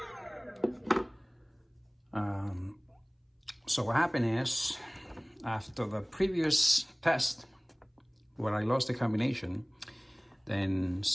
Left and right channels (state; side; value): identical; both; correlation 1.00